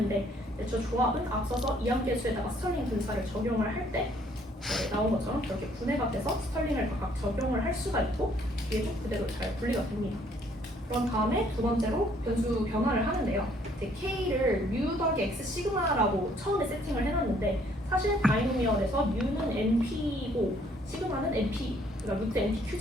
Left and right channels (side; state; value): both; normal; correlation 0.63